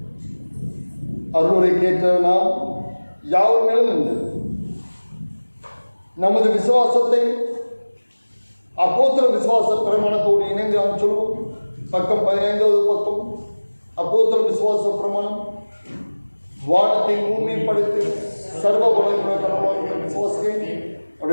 அருளுரை கேட்ட நாம் யாவர் மேலும் உண்டு. நமது விசுவாசத்தை அப்போஸ்தலர் விசுவாச பிரமாணத்தோடு இணைந்து நாம் சொல்வோம். பக்கம் 15வது பக்கம். அப்போஸ்தலர் விசுவாச பிரமாணம். வானத்தை பூமியை படைத்து சர்வ வல்லமையுள்ள கடவுளாகிய விசுவாசிக்கிறேன்.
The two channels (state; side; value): inverted; both; correlation -1.00